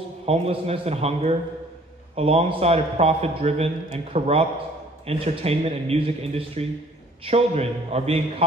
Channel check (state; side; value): normal; both; correlation 0.56